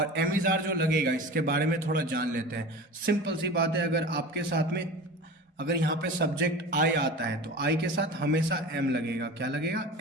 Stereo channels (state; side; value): normal; both; correlation 0.34